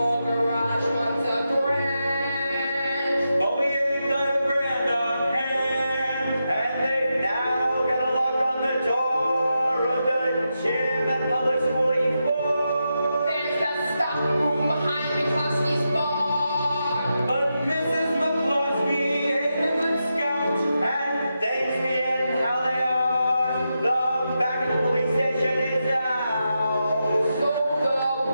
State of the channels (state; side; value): inverted; both; correlation -0.87